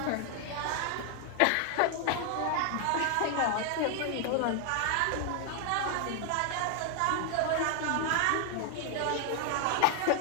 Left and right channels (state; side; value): different; both; correlation 0.00